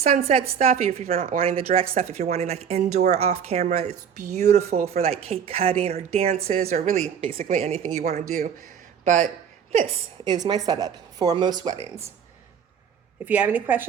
stuff. If you're not wanting the direct stuff, if you're wanting like indoor off camera, it's beautiful for like cake cutting or dances or really basically anything you want to do. But this is my setup for most weddings. If you have any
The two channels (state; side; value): quieter; left; 7.7 dB